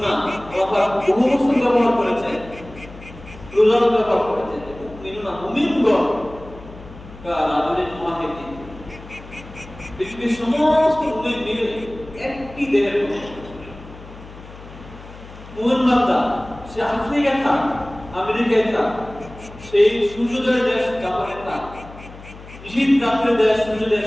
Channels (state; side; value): noise; left; hum, 17 dB below the sound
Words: আল্লাহ বহু বছর ব্যবহার করেছেন, প্লুরাল ব্যবহার করেছেন, মুমিনুনা মুমিনগণ কারাজুলিন ওয়াহিদিন, পৃথিবীর সমস্ত মুমিন মিলে একটি দেহের মতো। মুমিন বান্দা সে আফ্রিকায় থাক, আমেরিকায় থাক, সেই সূর্যোদয়ের দেশ জাপানে থাক, শীত রাত্রের দেশ সূর্য